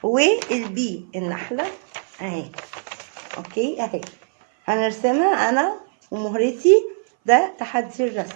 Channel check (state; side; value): silent; left; 62 dB below the other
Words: والبي النحلة اهي. اوكي اهي هنرسمها انا ومهرتي. ده تحدي